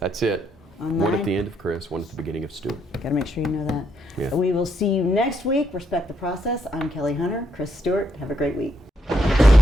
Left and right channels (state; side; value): normal; both; correlation 0.77